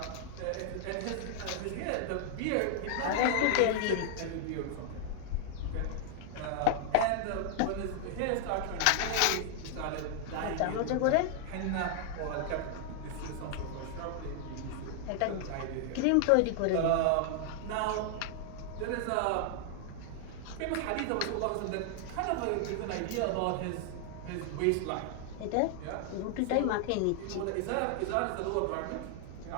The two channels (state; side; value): different; both; correlation 0.00